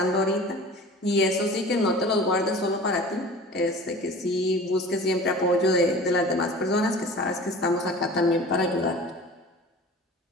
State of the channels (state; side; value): normal; both; correlation 0.40